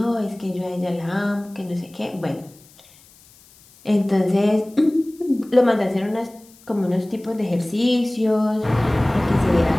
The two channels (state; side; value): noise; left; hiss, 27 dB below the sound